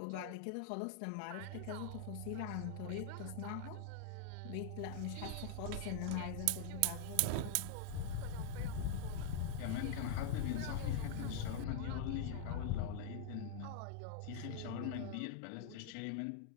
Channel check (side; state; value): both; different; correlation 0.00